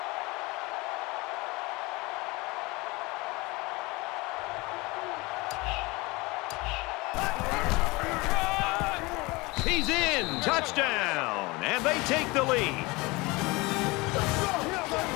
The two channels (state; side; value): quieter; right; 24.0 dB